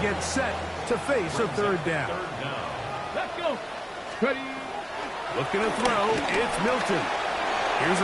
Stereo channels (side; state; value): both; identical; correlation 1.00